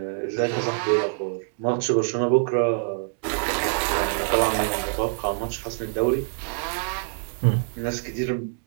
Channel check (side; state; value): left; silent; digital silence